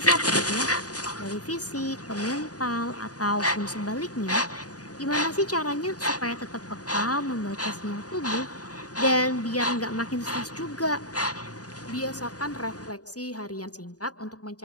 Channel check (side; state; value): right; late; 0.68 ms